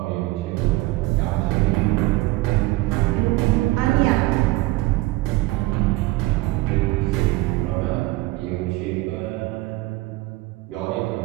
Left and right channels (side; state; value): left; quieter; 20.0 dB